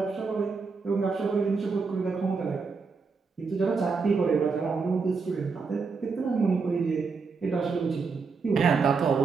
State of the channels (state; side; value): quieter; left; 4.8 dB